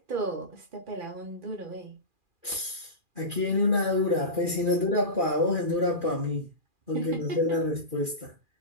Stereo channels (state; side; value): late; left; 2.4 ms